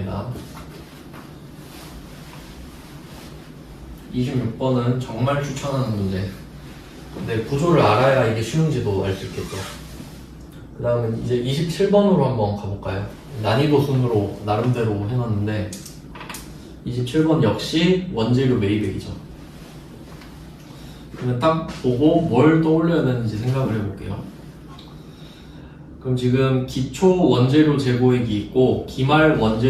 26번은 정말 추천하는 문제. 근데 구조를 알아야 이게 쉬운지도 알 수 있겠죠. 그 다음에 이제 27번으로 한번 가볼까요? 난이도 순으로 나름대로 해놨는데 27번 역시 원재료 매입액이죠. 그러면 딱 보고 뭘 떠올려야 되는지 생각을 해볼게요. 그럼 지금 기초 원재료 재고액이 있고 기말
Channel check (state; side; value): identical; both; correlation 1.00